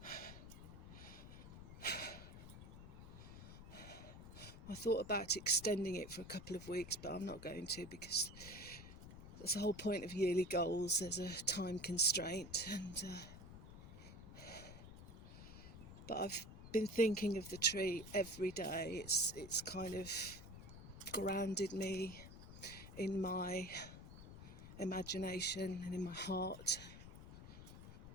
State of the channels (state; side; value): noise; left; rumble, 13 dB below the sound